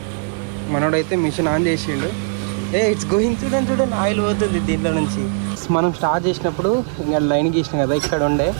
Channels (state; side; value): silent; left; 57 dB below the other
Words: మనోడైతే మిషన్ ఆన్ చేసిండు. ఇట్స్ గోయింగ్, చూడండి ఆయిల్ పోతుంది దీంట్లో నుంచి. మనం స్టార్ట్ చేసినప్పుడు ఇంకా లైన్ గీసినాం కదా ఇక్కడ ఉండే,